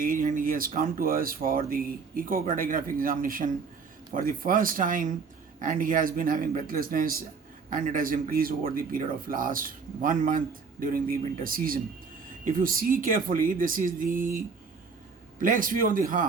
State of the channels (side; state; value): left; quieter; 5.2 dB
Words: and he has come to us for the echocardiographic examination for the first time, and he has been having breathlessness and it has increased over the period of last 1 month during the winter season. If you see carefully, this is the plex view of the